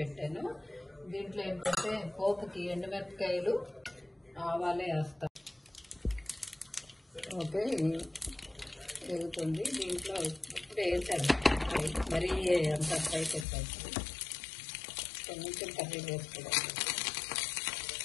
దీంట్లో ఏంటంటే పోపుకి ఎండుమిరపకాయలు ఆవాలే వేస్తాను. ఓకే, వేగుతుంది. దీంట్లో ఇప్పుడు వేసాను, మరీ అంత ఫ్రై చేస్తాను. కొంచెం కర్రీ వేసుకోవాలి.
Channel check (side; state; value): right; drops out; at 13.5 s